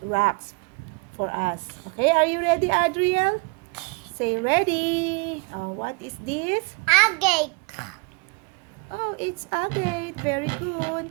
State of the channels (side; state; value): left; quieter; 30.6 dB